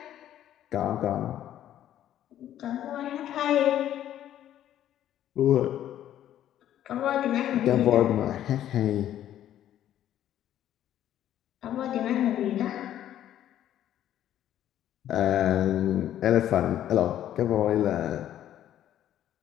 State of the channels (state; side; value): quieter; right; 11.6 dB